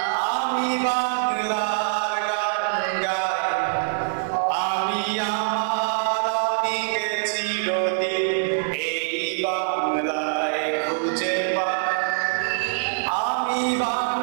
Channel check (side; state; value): left; silent; digital silence